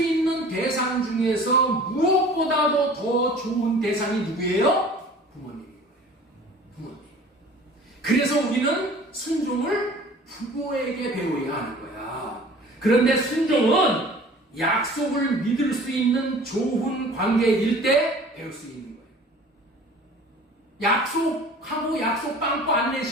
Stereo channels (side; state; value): both; normal; correlation 0.46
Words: 대상 중에서 무엇보다도 더 좋은 대상이 누구예요? 부모님인 거예요. 부모님. 그래서 우리는 순종을 부모에게 배워야 하는 거야. 그런데 순종은 약속을 믿을 수 있는 좋은 관계일 때 배울 수 있는 거예요. 약속하고 약속 빵꾸 안